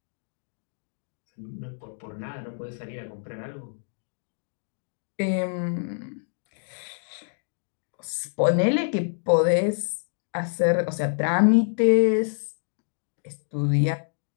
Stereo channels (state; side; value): silent; right; digital silence